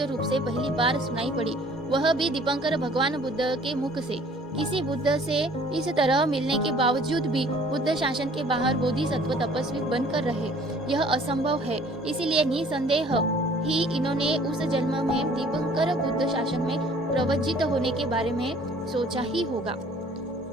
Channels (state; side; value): normal; both; correlation 0.54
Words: रूप से पहली बार सुनाई पड़ी, वह भी दीपंकर भगवान बुद्ध के मुख से। किसी बुद्ध से इस तरह मिलने के बावजूद भी बुद्ध शासन के बाहर बोधिसत्व तपस्वी बनकर रहे, यह असंभव है। इसीलिए निसंदेह ही इन्होंने उस जन्म में दीपंकर बुद्ध शासन में प्रवज्जित होने के बारे में सोचा ही होगा।